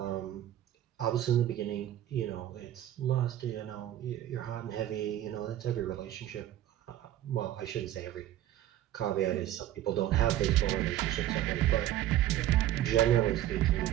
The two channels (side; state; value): left; quieter; 12.7 dB